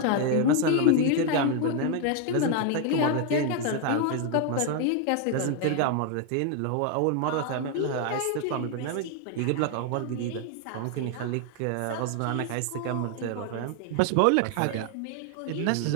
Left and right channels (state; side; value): different; both; correlation 0.01